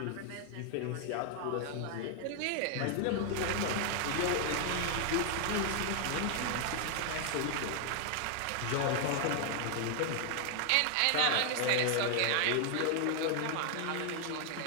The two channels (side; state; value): both; different; correlation 0.00